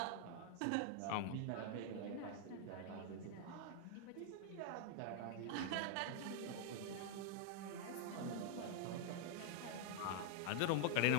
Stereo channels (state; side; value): different; both; correlation 0.00